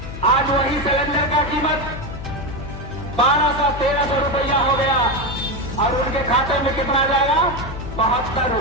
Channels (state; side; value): noise; left; hum, 10 dB below the sound